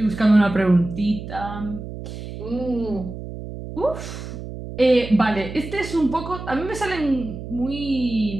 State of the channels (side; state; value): right; noise; hum, 10 dB below the sound